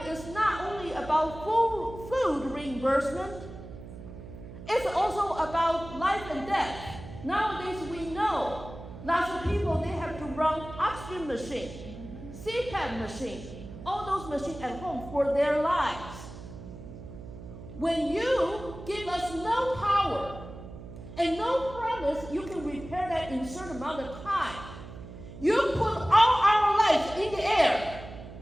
is not only about food reimbursement, it's also about life and death. Nowadays we know lots of people, they have to run oxygen machine, CPAP machine, all those machines at home for their lives. When you give us no power and no promise you can repair that in a certain amount of time, you put all our lives in the air.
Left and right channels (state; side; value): noise; right; hum, 13 dB below the sound